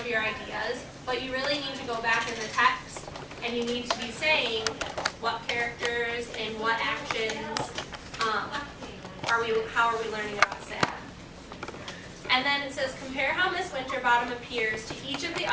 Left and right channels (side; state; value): both; identical; correlation 1.00